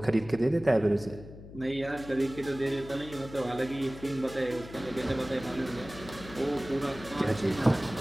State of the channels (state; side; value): noise; left; hum, 15 dB below the sound